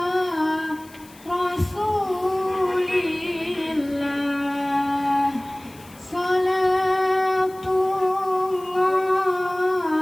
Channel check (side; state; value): left; noise; hiss, 24 dB below the sound